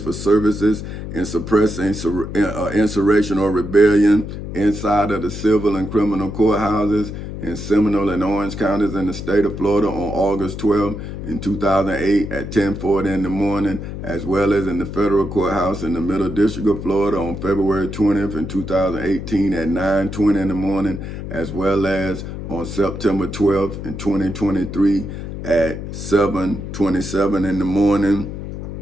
for services in suppressing insurrection or rebellion inside of the civil and criminal courthouses in Seminole and Orange counties in the state of Florida on August 12 in 2008 at 10:40 in the morning, as well as in the federal courthouse in the Middle District of Florida on February 20th in 2018 at 9:20 in the morning, as well as on September 12th in 2023 at 7:27 in the morning,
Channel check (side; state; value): left; noise; hum, 8 dB below the sound